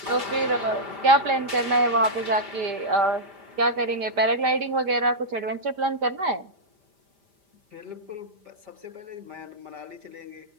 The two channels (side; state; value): left; late; 5.0 ms